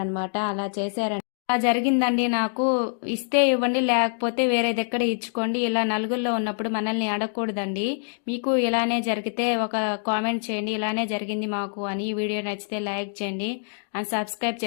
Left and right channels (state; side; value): silent; right; digital silence